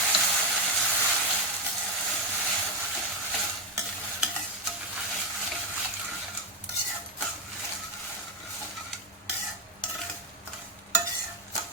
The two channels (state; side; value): normal; both; correlation 0.09